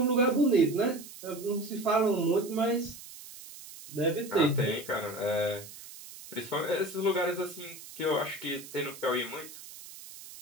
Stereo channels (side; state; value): right; noise; hiss, 15 dB below the sound